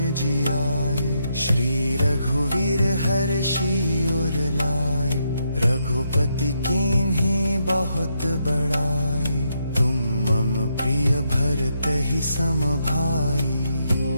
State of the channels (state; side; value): inverted; both; correlation -0.80